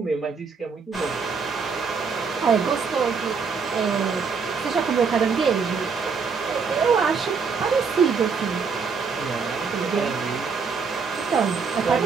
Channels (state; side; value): quieter; left; 5.4 dB